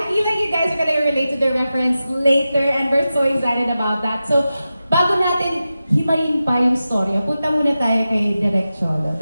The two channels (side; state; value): both; inverted; correlation -0.92